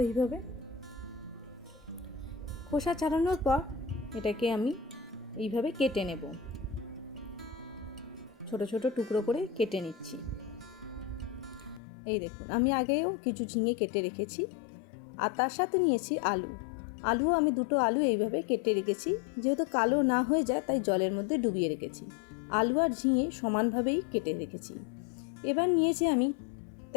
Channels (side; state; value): right; drops out; at 11.8 s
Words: এইভাবে। খোসা ছাড়ানোর পর এটাকে আমি এইভাবে কেটে নেব। ছোট ছোট টুকরো করে কেটে নিচ্ছি। এই দেখুন, আমি আগেও কিছু ঝিঙে কেটে রেখেছি আর তার সাথে নিয়েছি আলু আমি দুটো আলু এইভাবে কেটে রেখেছি। যেহেতু কালো না হয়ে যায় তাই জলের মধ্যে ডুবিয়ে রেখেছি। আলু আর ঝিঙে সমানভাবেই কেটে রেখেছি। এবার নিয়েছি আমি